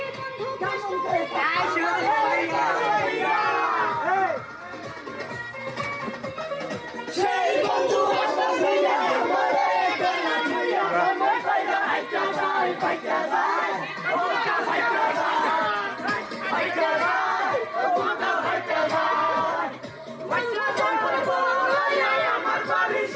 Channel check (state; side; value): identical; both; correlation 1.00